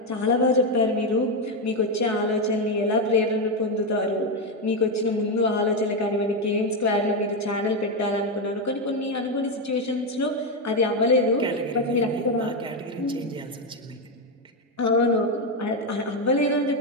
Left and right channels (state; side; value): normal; both; correlation 0.07